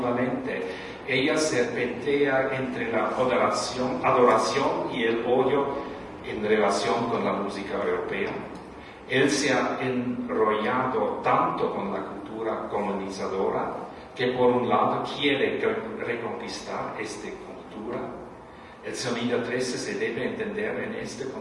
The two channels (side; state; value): both; identical; correlation 1.00